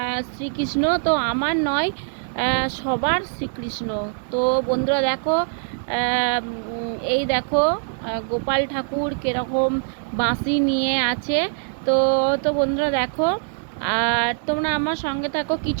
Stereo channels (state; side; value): silent; left; digital silence